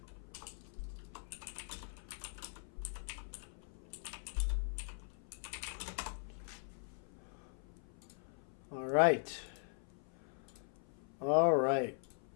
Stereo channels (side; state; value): right; silent; 50 dB below the other